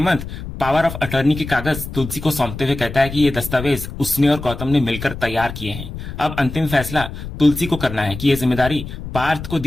पावर ऑफ अटर्नी के कागज तुलसी को सौंपते हुए कहता है कि ये दस्तावेज उसने और गौतम ने मिलकर तैयार किए हैं। अब अंतिम फैसला तुलसी को करना है कि ये जिम्मेदारी पार्थ को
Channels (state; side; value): noise; left; rumble, 10 dB below the sound